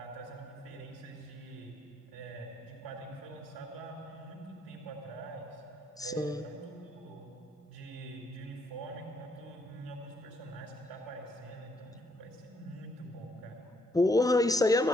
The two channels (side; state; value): both; normal; correlation 0.72